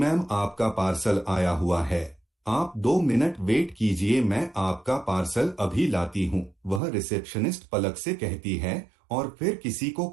आपका पार्सल आया हुआ है। आप 2 मिनट वेट कीजिए, मैं आपका पार्सल अभी लाती हूँ, वह रिसेप्शनिस्ट पलक से कहती है और फिर किसी को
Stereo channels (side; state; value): left; drops out; at 6.8 s